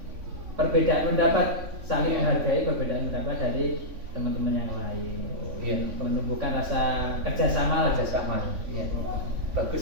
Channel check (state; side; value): late; left; 3.5 ms